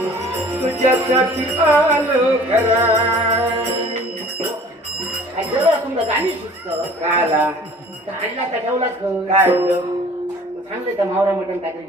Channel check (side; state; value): both; normal; correlation 0.49